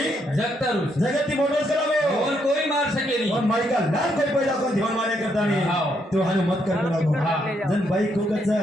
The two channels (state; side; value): normal; both; correlation 0.75